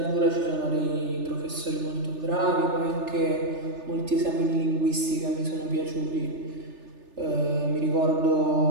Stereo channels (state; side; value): late; left; 3.4 ms